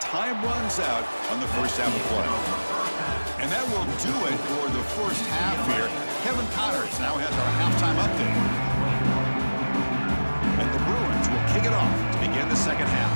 time runs out on the first half of play. And that will do it for the first half here. Kevin Connors now has our halftime update. And the Bruins will kick it off to begin the second half.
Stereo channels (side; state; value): both; inverted; correlation -1.00